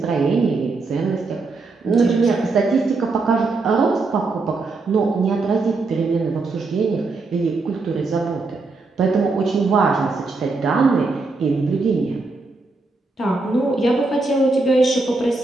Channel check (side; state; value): left; quieter; 3.7 dB